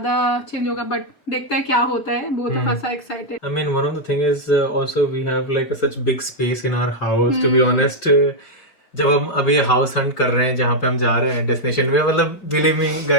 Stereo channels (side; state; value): right; late; 5.3 ms